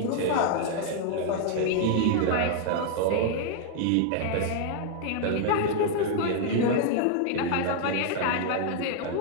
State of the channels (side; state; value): both; different; correlation 0.00